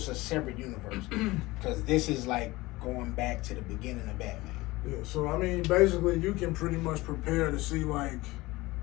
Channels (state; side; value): quieter; right; 20.4 dB